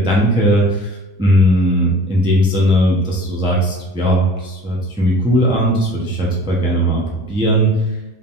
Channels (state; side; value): normal; both; correlation 0.45